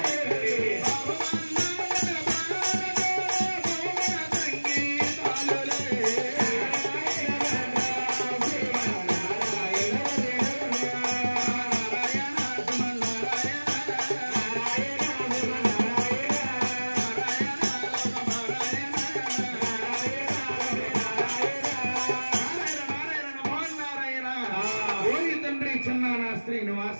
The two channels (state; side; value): inverted; both; correlation -1.00